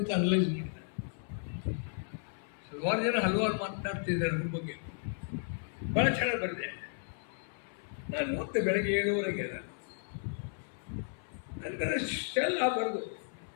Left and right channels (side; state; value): right; silent; 55 dB below the other